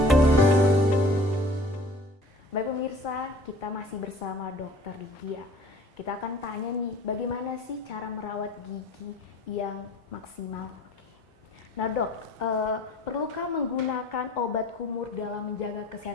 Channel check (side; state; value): both; normal; correlation 0.47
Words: Baik pemirsa, kita masih bersama Dokter Lydia. Kita akan tanya nih, bagaimana sih cara merawat gigi yang maksimal? Nah dok, perlukah menggunakan obat kumur dalam menjaga